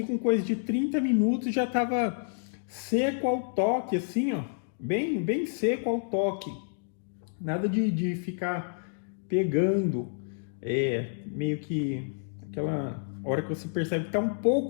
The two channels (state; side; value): silent; right; digital silence